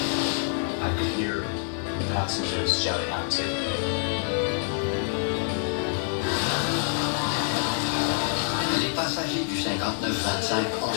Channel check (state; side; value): silent; right; 61 dB below the other